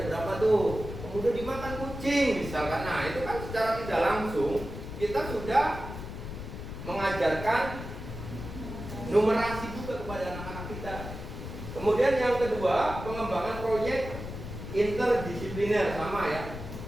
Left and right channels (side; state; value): left; noise; rumble, 9 dB below the sound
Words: berapa tuh? Kemudian dimakan kucing misalkan. Nah, itu kan secara tidak langsung kita sudah mengajarkan numerasi juga kepada anak-anak kita. Kemudian yang kedua, pengembangan proyek interdisipliner sama ya.